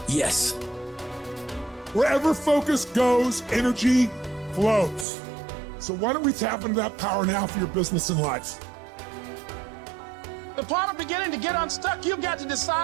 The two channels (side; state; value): left; drops out; at 5.1 s